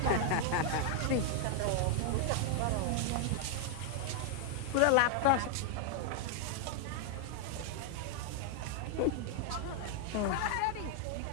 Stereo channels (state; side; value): different; both; correlation 0.00